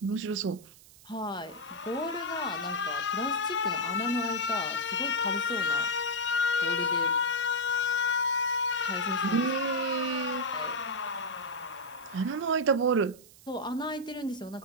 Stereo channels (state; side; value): noise; right; hiss, 22 dB below the sound